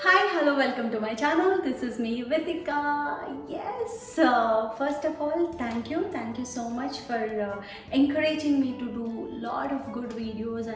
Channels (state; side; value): identical; both; correlation 1.00